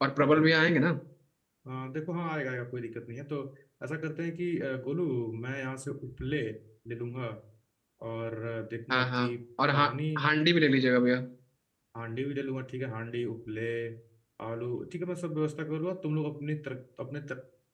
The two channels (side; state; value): both; identical; correlation 1.00